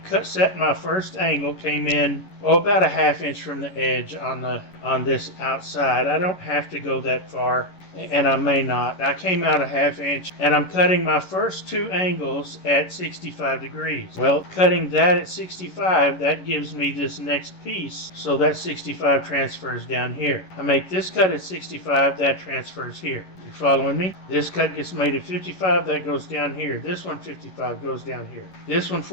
set my first angle, came in about a 1/2 inch from the edge on this outside. I don't have to go that far, and I may not. I came out a 1/2 inch, and I'm cutting my first 2 angles at 65 degrees. Well, cutting that at 65, that gives me this next piece, so that 65 transfers down here. I make this cut at 65, that transfers here. You following me? This cut gets made at 55, that goes down here. This one 55 goes down here. This one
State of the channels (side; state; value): right; late; 11 ms